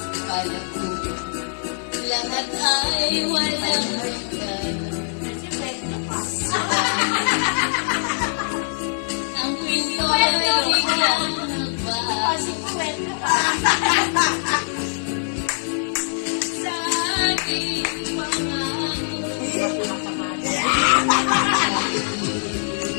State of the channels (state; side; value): silent; right; digital silence